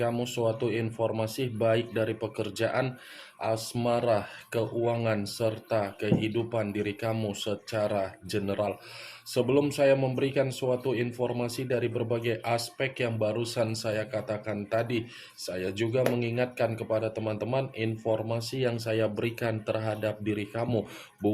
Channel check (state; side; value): identical; both; correlation 1.00